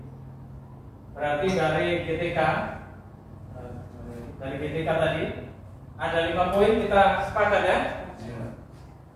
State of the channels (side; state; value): both; identical; correlation 1.00